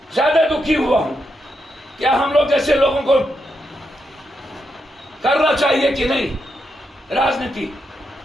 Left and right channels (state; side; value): normal; both; correlation 0.83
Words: ज्यादा दुखी हुआ हूं। क्या हम लोग जैसे लोगों को करना चाहिए कि नहीं राजनीति?